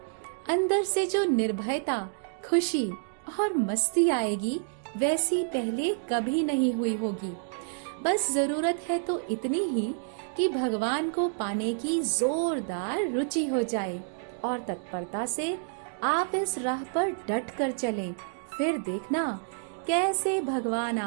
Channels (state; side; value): silent; left; digital silence